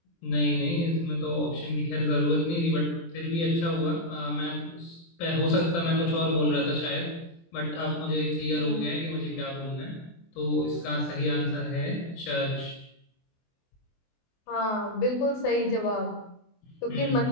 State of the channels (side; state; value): right; late; 24 ms